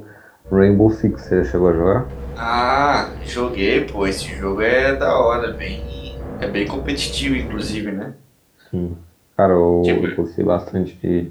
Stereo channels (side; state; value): both; identical; correlation 1.00